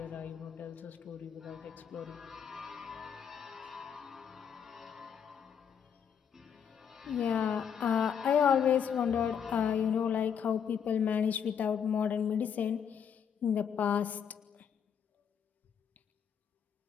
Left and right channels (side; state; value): right; quieter; 7.6 dB